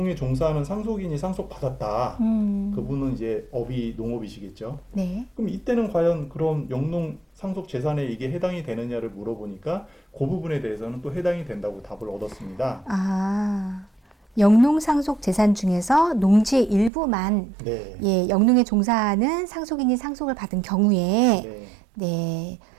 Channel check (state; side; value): drops out; left; at 16.9 s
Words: 종사하는 상속인이 상속받았다. 그분은 이제 업이 농업이시겠죠. 네. 그럼 이때는 과연 그런 영농 상속 재산에 이게 해당이 되느냐를 물어보니까 그 부분에 대해서는 또 해당이 된다고 답을 얻었습니다. 아, 영농 상속 재산 중에서 농지의 일부만 네. 예, 영농에 종사하는 상속인이 상속을 받은 경우에 네. 네.